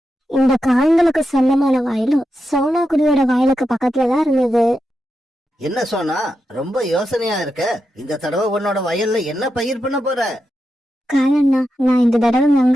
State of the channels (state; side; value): normal; both; correlation 0.87